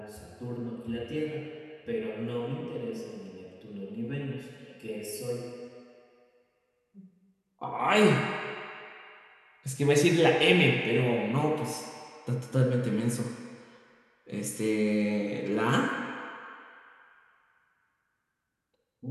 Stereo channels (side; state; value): both; identical; correlation 1.00